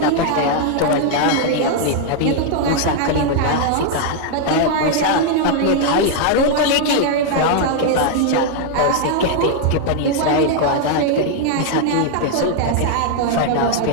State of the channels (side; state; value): both; different; correlation 0.00